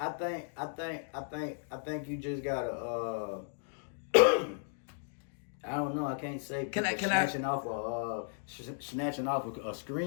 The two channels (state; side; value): silent; right; digital silence